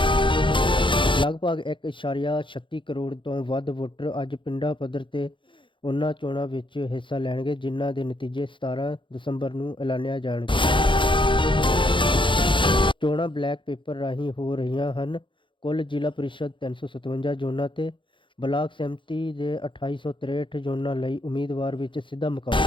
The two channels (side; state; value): right; late; 0.24 ms